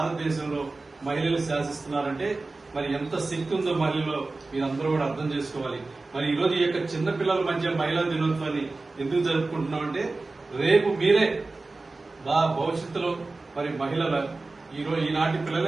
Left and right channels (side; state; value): left; quieter; 3.4 dB